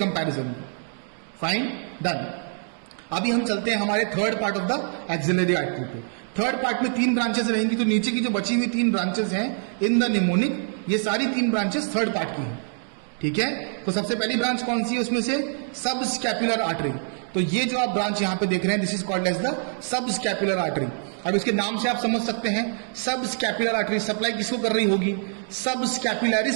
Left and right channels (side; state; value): left; silent; 60 dB below the other